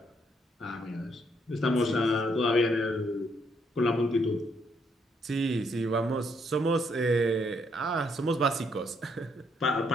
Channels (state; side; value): normal; both; correlation 0.73